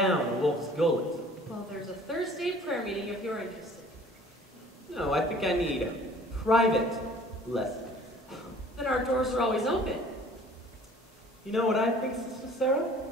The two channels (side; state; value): both; normal; correlation 0.51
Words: a wolf's gullet. Well, there's a Thursday prayer meeting if you're interested. No, I think I need private lessons. Then our doors are always open. You know what I think, Sister Sarah?